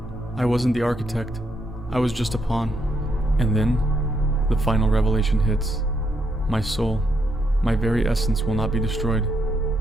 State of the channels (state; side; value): normal; both; correlation 0.77